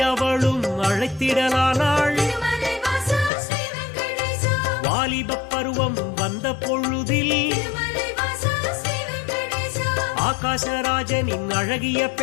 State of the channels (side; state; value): right; drops out; at 3.3 s